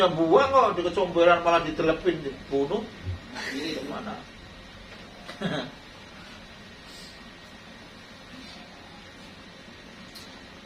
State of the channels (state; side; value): identical; both; correlation 1.00